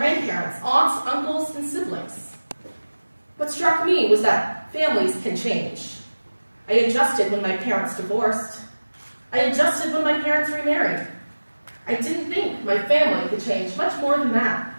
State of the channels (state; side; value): inverted; both; correlation -1.00